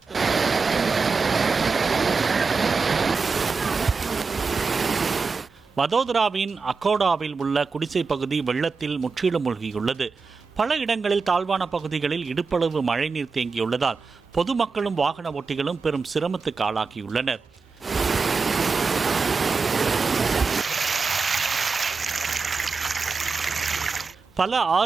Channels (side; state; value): left; quieter; 4.7 dB